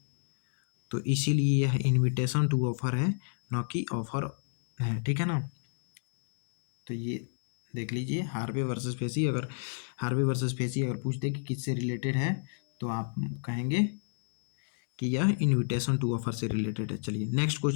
तो इसीलिए यह इनविटेशन टू ऑफर है, न कि ऑफर है, ठीक है ना। तो ये देख लीजिए, हार्वे वर्सेस फेसी। अगर हार्वे वर्सेस फेसी अगर पूछते कि किससे रिलेटेड है, तो आप कहेंगे कि यह इनविटेशन टू ऑफर से रिलेटेड है। चलिए नेक्स्ट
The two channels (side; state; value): right; silent; 58 dB below the other